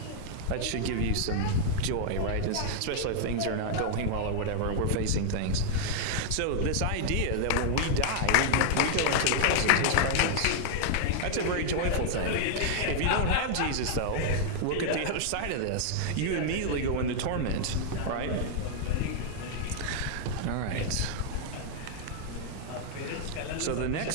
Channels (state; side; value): different; both; correlation -0.01